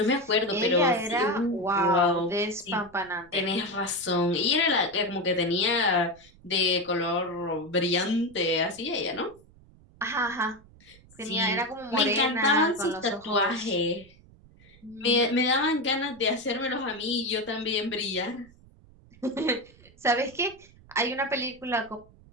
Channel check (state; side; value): noise; right; rumble, 26 dB below the sound